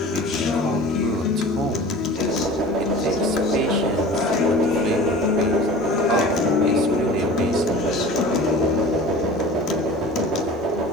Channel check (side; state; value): both; normal; correlation 0.40